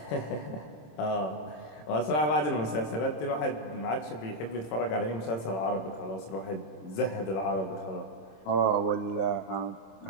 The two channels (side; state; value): right; late; 26 ms